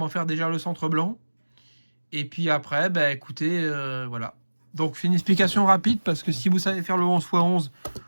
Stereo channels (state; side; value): inverted; both; correlation -1.00